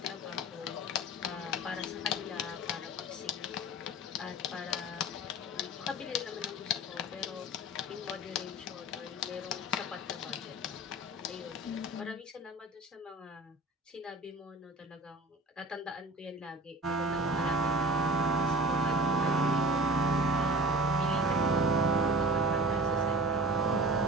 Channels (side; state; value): both; normal; correlation 0.38